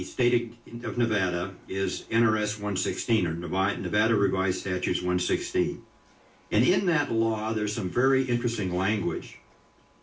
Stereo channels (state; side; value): identical; both; correlation 1.00